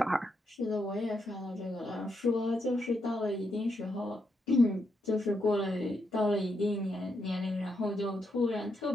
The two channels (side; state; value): both; normal; correlation 0.81